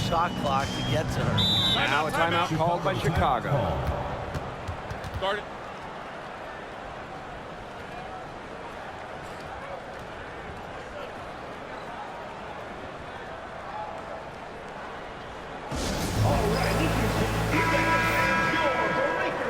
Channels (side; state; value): both; identical; correlation 1.00